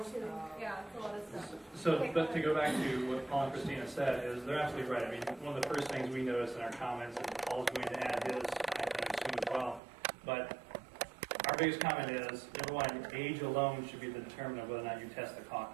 II. Yeah, it's a lot of stuff. So, but to go back to what Paul and Christina said, is they're absolutely right. I mean, one of the first things we noticed in our comments, and Paul's going to add his, I assume as well, but our biggest comment is, number one, age alone should be the determinant of whether or not you test the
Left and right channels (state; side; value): drops out; left; at 9.8 s